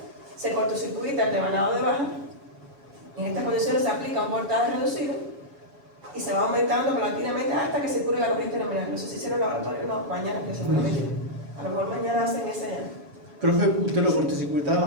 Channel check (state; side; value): late; left; 7.1 ms